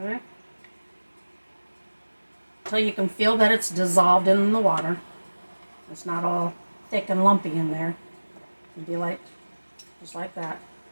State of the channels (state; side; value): inverted; both; correlation -1.00